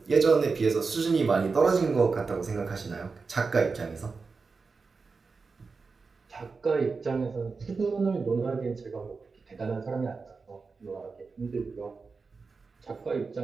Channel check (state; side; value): quieter; left; 4.5 dB